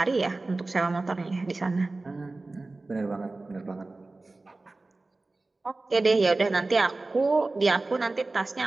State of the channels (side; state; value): left; quieter; 3.2 dB